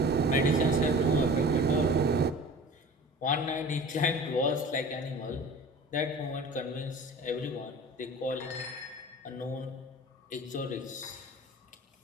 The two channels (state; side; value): normal; both; correlation 0.39